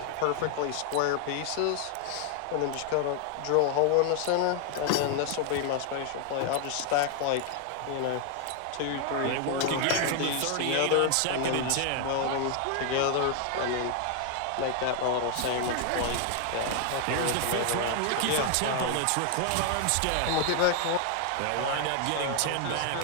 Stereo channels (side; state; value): both; different; correlation 0.00